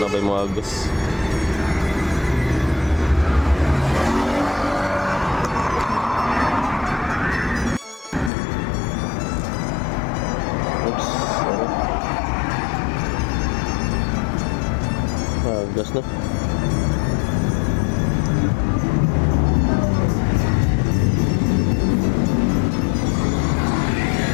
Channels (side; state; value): right; drops out; at 8.3 s